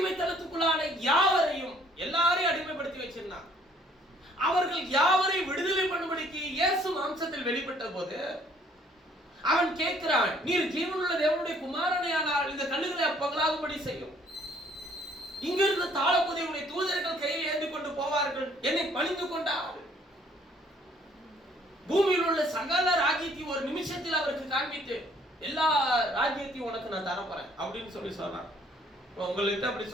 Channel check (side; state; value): both; normal; correlation 0.61